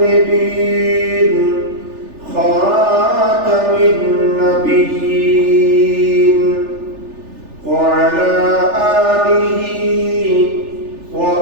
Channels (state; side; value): late; left; 3.4 ms